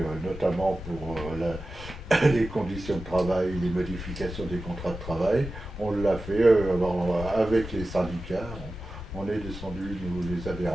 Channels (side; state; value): both; normal; correlation 0.94